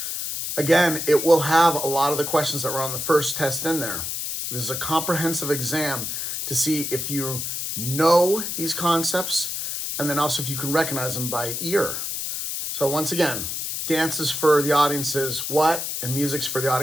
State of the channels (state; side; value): noise; left; hiss, 4 dB below the sound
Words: Again, it will have a lot of the questions that were on the first test in there. This is a comprehensive exam to see if you know these concepts and then also if you can recognize them by ear. So once again, dances for the audiences what, and music's for the